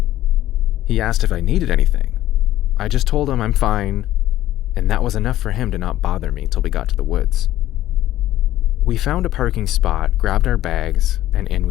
He asked if I needed anything. I just told him I'm fine, and that was enough for him to not bother me till we got to the woods. We found a parking spot, grabbed our bags, and in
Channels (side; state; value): right; quieter; 14.1 dB